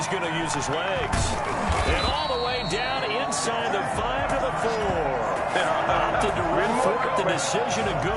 going to use his legs. And all the way down inside the 5 to the 4. Opted to run for it. The decision, a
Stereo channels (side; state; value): both; identical; correlation 1.00